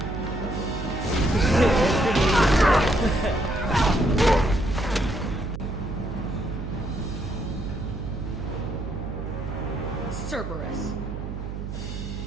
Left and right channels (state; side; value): noise; right; hum, 7 dB below the sound